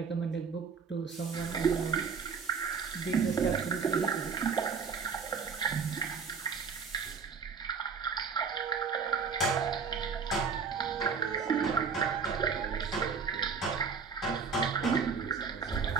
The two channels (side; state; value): left; quieter; 5.7 dB